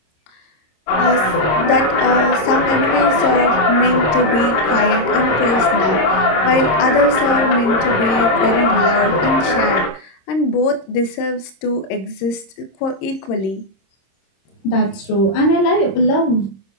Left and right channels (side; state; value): right; late; 26 ms